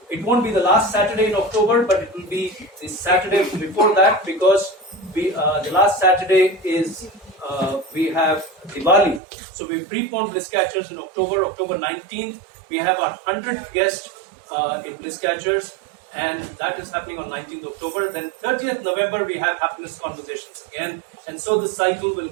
it won't be the last Saturday in October, but it will be the Saturday before that, because the last Saturday is we have Diwali. So we preponed Bliss Catchers in October 19th. We have our 100th guest in Bliss Catchers, and that is happening on 19th October. Then 30th November, we have Happiness Conversations again. And so this cycle will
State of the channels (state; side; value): drops out; left; at 9.2 s